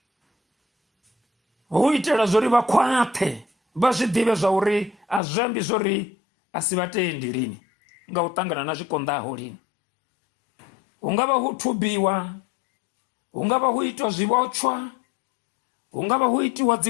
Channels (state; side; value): drops out; right; at 5.2 s